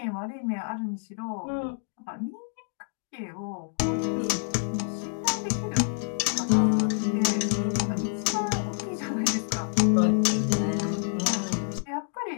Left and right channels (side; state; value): right; silent; digital silence